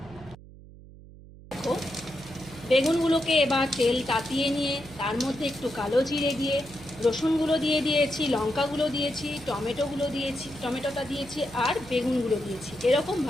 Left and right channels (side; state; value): right; noise; hum, 19 dB below the sound